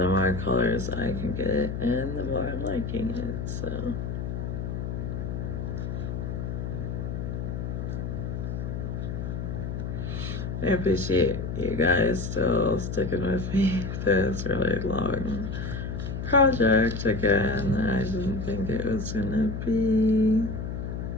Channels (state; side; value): noise; left; hum, 4 dB below the sound